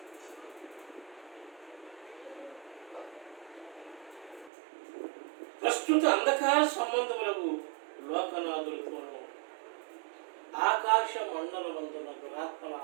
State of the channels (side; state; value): left; drops out; at 4.5 s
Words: ప్రస్తుత అంధకార సంబంధములకు లోకనాథులతోనూ ఆకాశ మండలమందున దురాత్మల